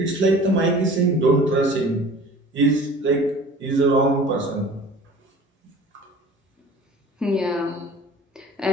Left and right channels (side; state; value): both; normal; correlation 0.44